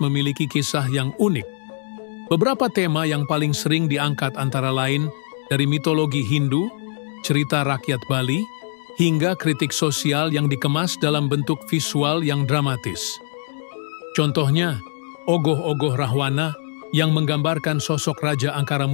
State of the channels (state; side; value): silent; right; digital silence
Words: memiliki kisah yang unik. Beberapa tema yang paling sering diangkat antara lain dari mitologi Hindu, cerita rakyat Bali, hingga kritik sosial yang dikemas dalam bentuk visual yang dramatis. Contohnya, ogoh-ogoh Rahwana yang menggambarkan sosok Raja Angkara